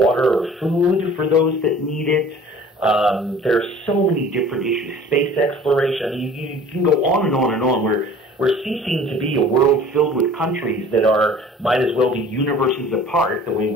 or food for those that need it. There are so many different issues. Space exploration. I mean, you can go on and on and on. We're ceasing to be a world filled with countries that might as well be universes apart, the way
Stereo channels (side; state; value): both; normal; correlation 0.46